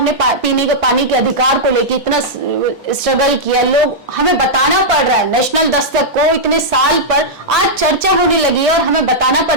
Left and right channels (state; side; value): normal; both; correlation -0.08